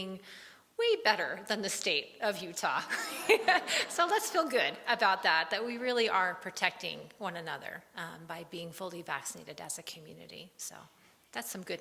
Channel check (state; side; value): identical; both; correlation 1.00